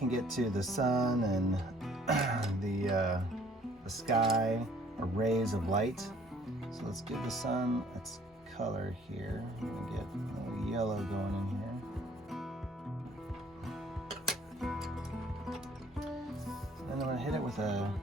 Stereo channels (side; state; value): both; normal; correlation 0.58